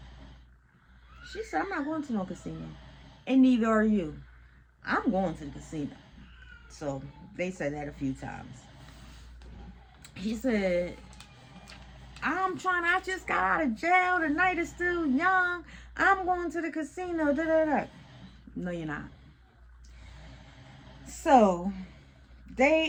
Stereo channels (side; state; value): both; identical; correlation 1.00